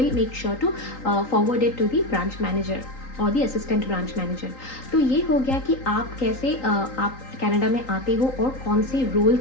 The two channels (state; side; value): late; right; 3.8 ms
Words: make sure to forward it to the branch manager. और दी असिस्टेंट ब्रांच मैनेजर। तो ये हो गया कि आप कैसे आप कनाडा में आते हो और कौन से रोल